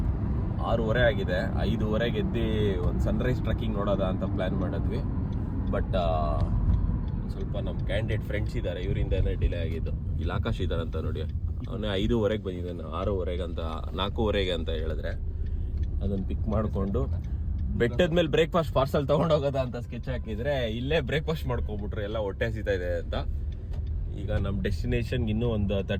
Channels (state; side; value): identical; both; correlation 1.00